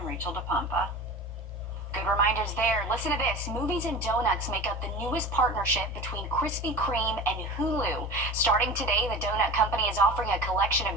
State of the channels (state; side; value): normal; both; correlation 0.34